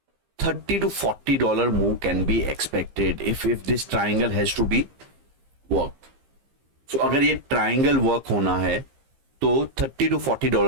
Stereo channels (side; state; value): left; late; 15 ms